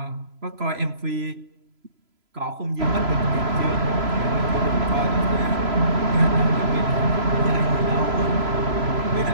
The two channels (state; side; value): late; left; 3.0 ms